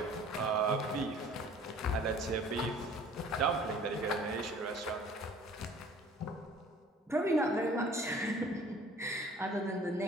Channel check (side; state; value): both; normal; correlation 0.50